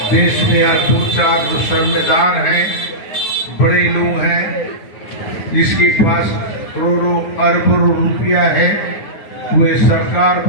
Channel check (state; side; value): late; right; 9.6 ms